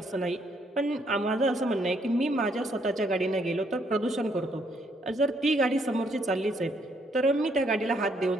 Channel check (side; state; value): both; normal; correlation 0.71